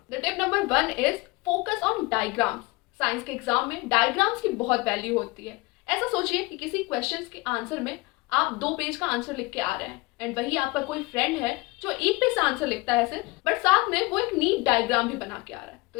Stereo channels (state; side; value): quieter; right; 23.6 dB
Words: The tip number 1 is focus on diagrams. Science के एग्जाम में डायग्राम्स की बहुत वैल्यू होती है। ऐसा सोचिए कि किसी क्वेश्चन के आंसर में आप 2 पेज का आंसर लिख के आ रहे हैं एंड वही आपका कोई फ्रेंड है जो 1 पेज से आंसर लिखता है सिर्फ, बट साथ में वो एक नीट डायग्राम भी बना के आ रहा है। तो